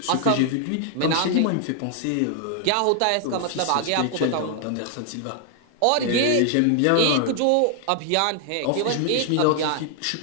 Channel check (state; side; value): different; both; correlation 0.00